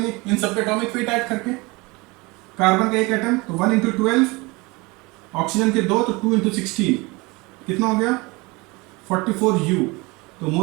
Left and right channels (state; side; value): quieter; left; 24.9 dB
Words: इन सबके एटॉमिक वेट ऐड करके। कार्बन का एक एटम तो 1 into 12, ऑक्सीजन के 2 तो 2 into 16, कितना हो गया? 44U। तो